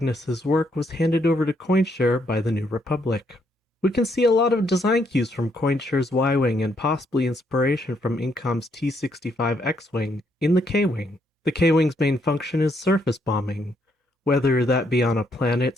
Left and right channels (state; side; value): normal; both; correlation 0.74